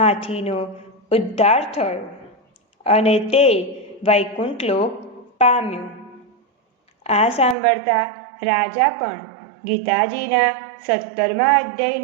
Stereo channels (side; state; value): left; drops out; at 7.6 s